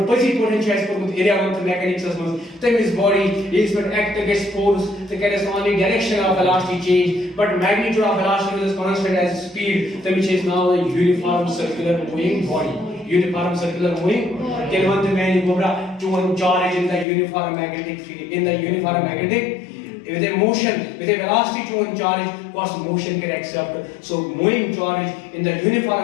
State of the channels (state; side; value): drops out; right; at 17.1 s